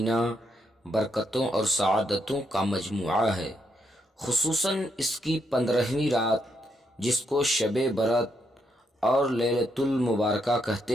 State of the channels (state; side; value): normal; both; correlation 0.78